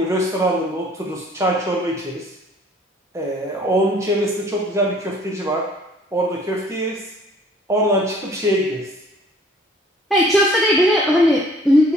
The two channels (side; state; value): both; normal; correlation 0.55